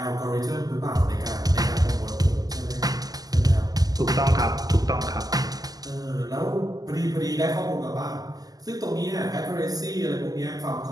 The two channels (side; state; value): left; late; 0.18 ms